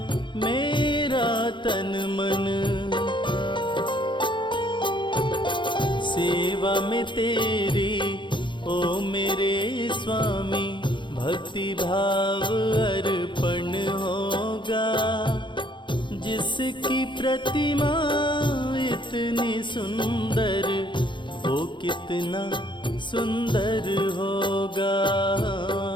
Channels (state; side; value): late; right; 0.23 ms